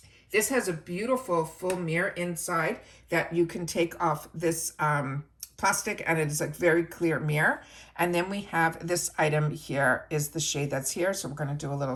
This has a beautiful full mirror inside that you can take off this plastic, and it is a very clear mirror. And then we have this item here is the shade that's here. So we're going to do a little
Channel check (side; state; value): both; identical; correlation 1.00